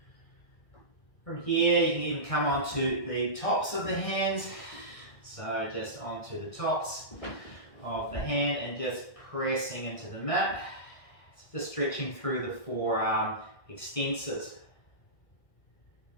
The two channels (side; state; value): right; late; 1.6 ms